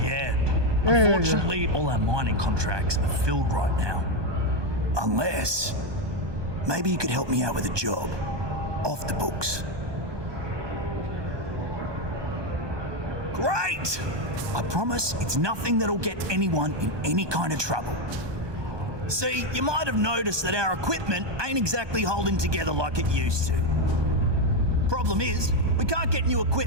yeah, unfortunately, all our mining contracts are filled right now. Unless, maybe you could help me out with a job. Off the books. Great! I promise it's nothing that'll get anyone in any kind of trouble. See, you might have noticed that our equipment ain't exactly holding together like it used to. Problem is, we can't get new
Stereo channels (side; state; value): left; late; 1.2 ms